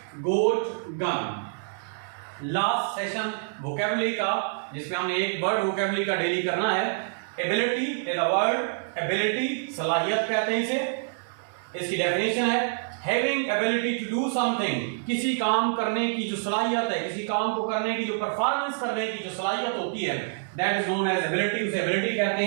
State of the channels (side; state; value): left; silent; digital silence